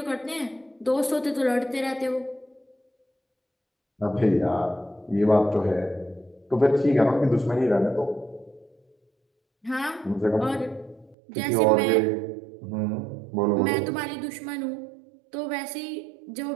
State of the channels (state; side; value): drops out; left; at 11.2 s